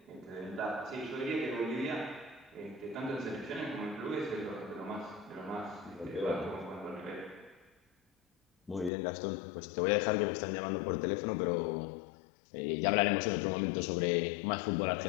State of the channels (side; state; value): right; drops out; at 8.9 s